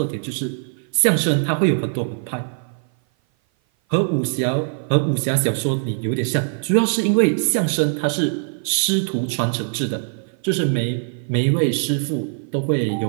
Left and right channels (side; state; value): left; silent; 57 dB below the other